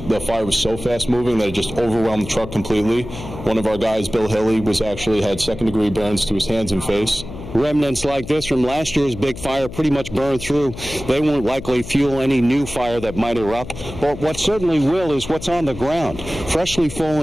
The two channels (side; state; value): left; noise; hum, 12 dB below the sound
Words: the fire was so fast-moving that it just overwhelmed the truck completely. One of our guys, Bill Hilly, had second-degree burns to his hands and face. Remnants like this from last year's big fire pretty much burned through. They won't likely fuel any new fire that might erupt. But what certainly will is what's on the ground. Freshly